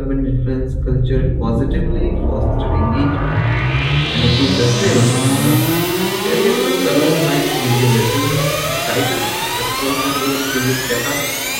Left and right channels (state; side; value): identical; both; correlation 1.00